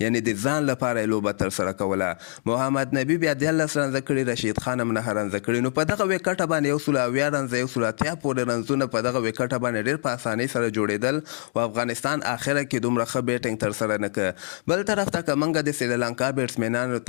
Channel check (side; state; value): right; silent; digital silence